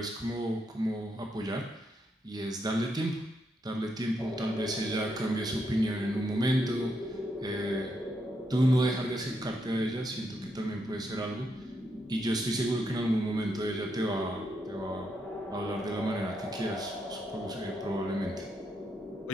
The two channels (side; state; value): both; normal; correlation 0.80